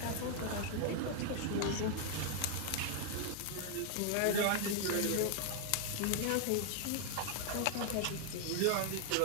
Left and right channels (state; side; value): different; both; correlation 0.00